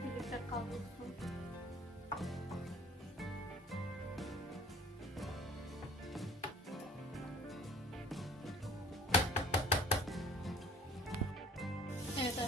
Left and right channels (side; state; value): both; normal; correlation 0.49